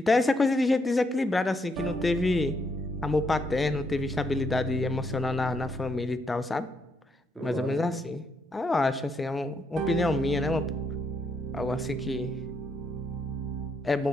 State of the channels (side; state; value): both; normal; correlation 0.76